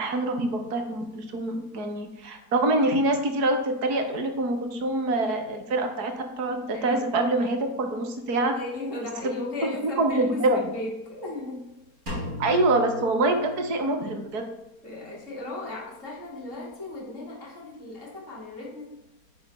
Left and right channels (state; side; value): late; left; 4.3 ms